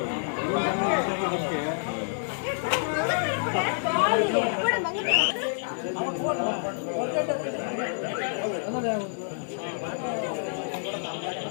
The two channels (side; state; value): right; silent; 59 dB below the other